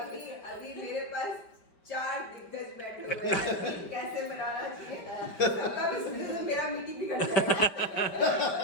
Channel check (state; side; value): late; right; 5.2 ms